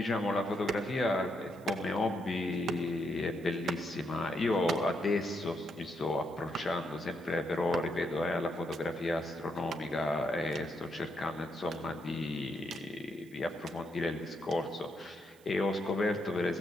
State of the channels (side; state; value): right; noise; hiss, 27 dB below the sound